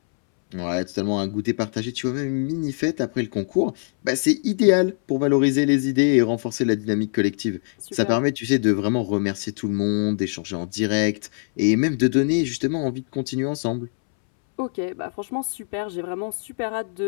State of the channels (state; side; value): silent; right; 63 dB below the other